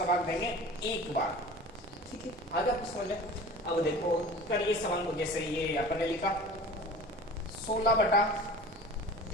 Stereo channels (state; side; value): normal; both; correlation 0.40